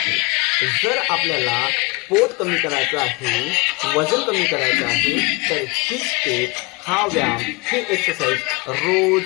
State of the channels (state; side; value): quieter; right; 26.9 dB